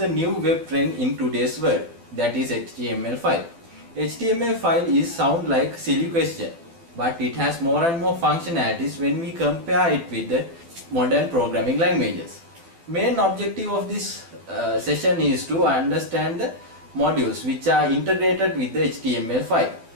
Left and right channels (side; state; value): left; late; 12 ms